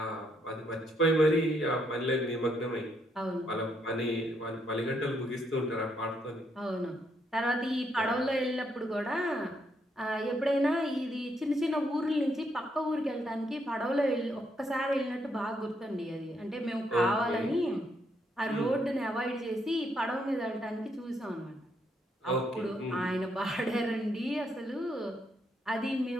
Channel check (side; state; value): both; normal; correlation 0.75